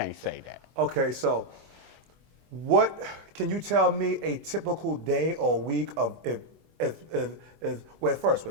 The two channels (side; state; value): left; late; 24 ms